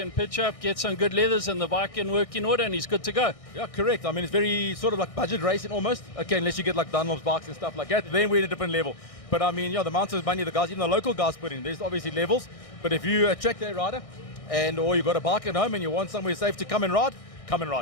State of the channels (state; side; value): late; right; 1.6 ms